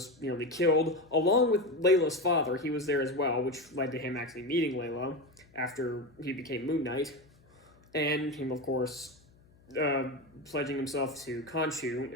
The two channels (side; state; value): left; noise; hum, 29 dB below the sound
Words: nearly killed, along with Layla's father. He was there as well, which led to him actually meeting Layla after he became Moon Knight. And him, of course, pledging himself to Khonshu